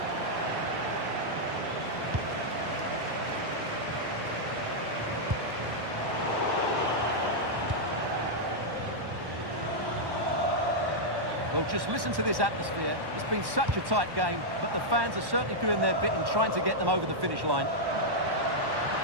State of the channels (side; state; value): left; late; 1.1 ms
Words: Well, just listen to this atmosphere. It's been such a tight game, but the fans are certainly doing their bit in trying to get them over the finish line.